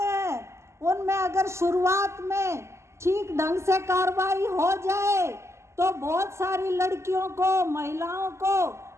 उनमें अगर शुरुआत में ठीक ढंग से कार्रवाई हो जाए तो बहुत सारी लड़कियों को, महिलाओं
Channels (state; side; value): late; left; 0.13 ms